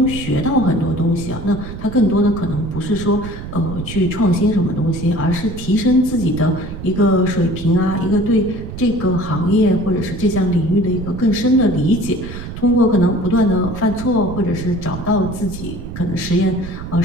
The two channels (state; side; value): noise; right; rumble, 10 dB below the sound